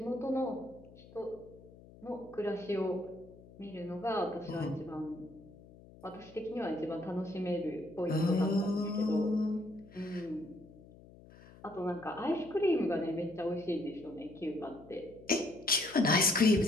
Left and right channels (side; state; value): left; noise; hum, 21 dB below the sound